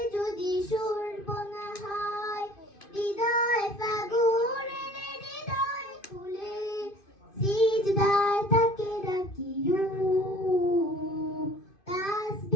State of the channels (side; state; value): right; late; 2.5 ms